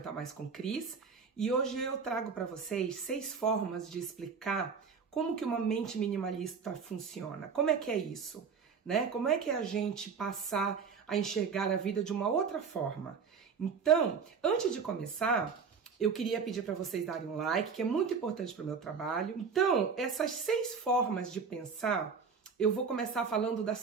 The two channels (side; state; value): left; quieter; 5.8 dB